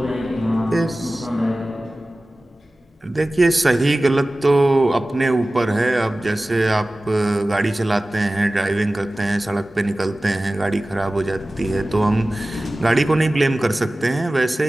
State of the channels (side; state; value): both; normal; correlation 0.97